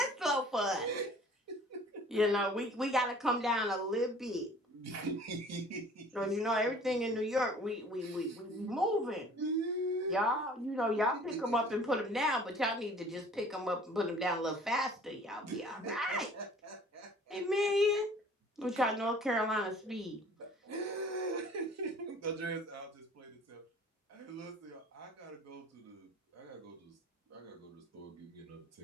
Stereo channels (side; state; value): both; normal; correlation 0.50